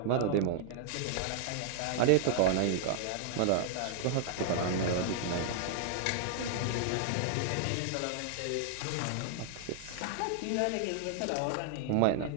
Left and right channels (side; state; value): both; different; correlation -0.01